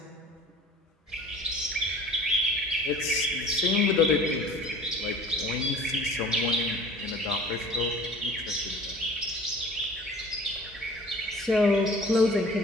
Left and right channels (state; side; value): normal; both; correlation 0.45